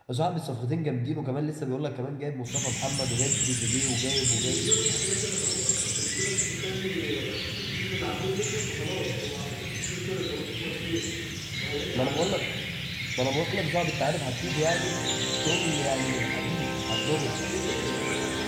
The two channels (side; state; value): both; identical; correlation 1.00